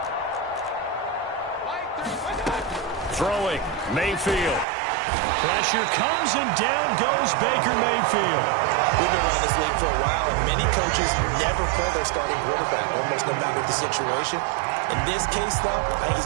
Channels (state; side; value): drops out; left; at 4.7 s